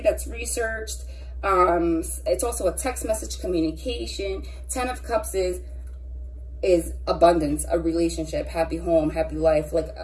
that's researched. It's also a text message communication. 10 of Cups is abundance, a relationship, happy home, happy life, like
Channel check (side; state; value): both; identical; correlation 1.00